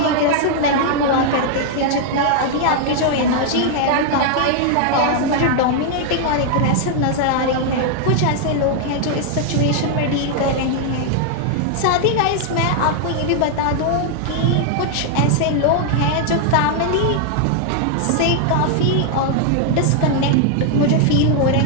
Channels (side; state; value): both; different; correlation 0.00